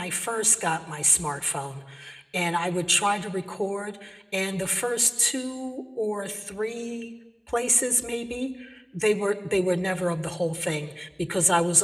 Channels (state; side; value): identical; both; correlation 1.00